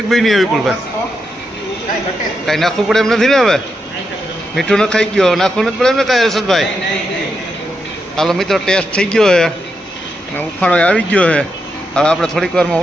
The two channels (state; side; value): normal; both; correlation 0.84